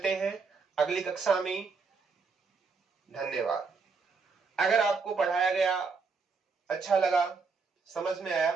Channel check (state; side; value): quieter; left; 4.7 dB